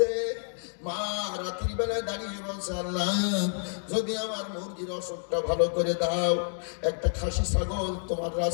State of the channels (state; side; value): silent; right; 59 dB below the other